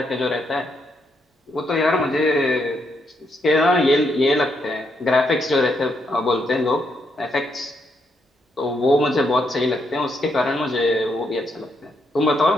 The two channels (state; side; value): normal; both; correlation 0.77